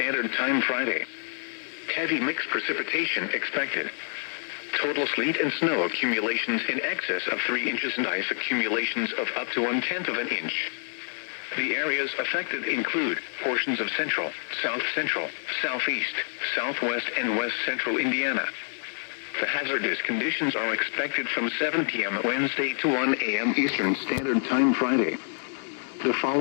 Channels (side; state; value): right; silent; digital silence